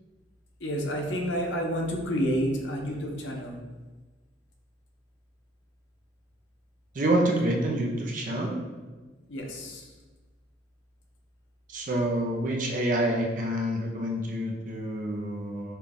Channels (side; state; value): both; normal; correlation 0.58